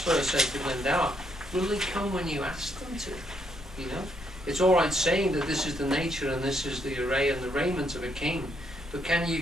said to Glendower, will they come when you ask them to? You know? It's all right saying that this is the nature and this is the array and the raiment of a king, but can you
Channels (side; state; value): both; normal; correlation 0.74